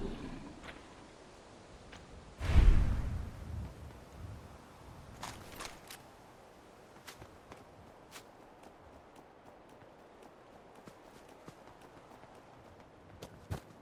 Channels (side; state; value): both; identical; correlation 1.00